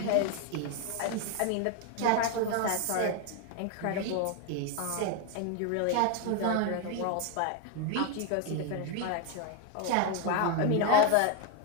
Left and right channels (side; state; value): both; different; correlation 0.01